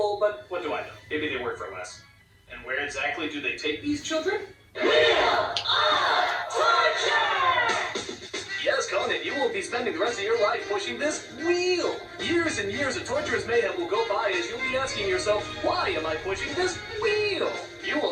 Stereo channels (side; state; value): both; identical; correlation 1.00